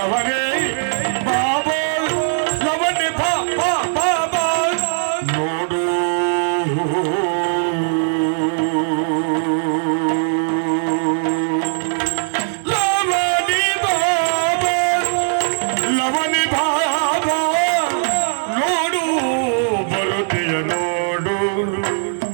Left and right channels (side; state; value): left; silent; digital silence